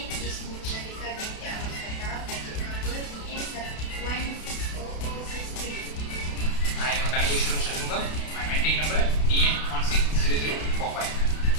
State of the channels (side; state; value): right; late; 32 ms